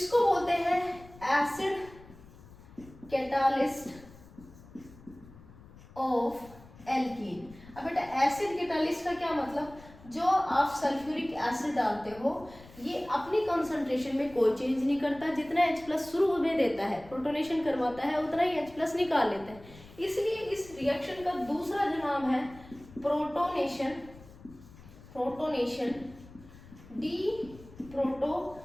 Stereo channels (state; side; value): noise; left; rumble, 21 dB below the sound